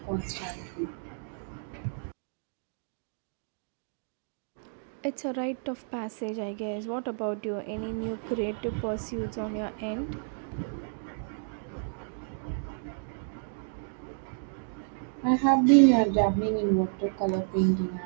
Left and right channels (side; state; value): left; silent; digital silence